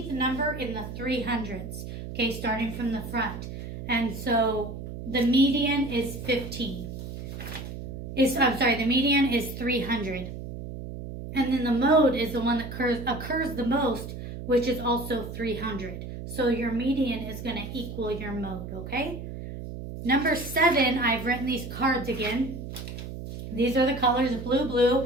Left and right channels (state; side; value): noise; right; hum, 9 dB below the sound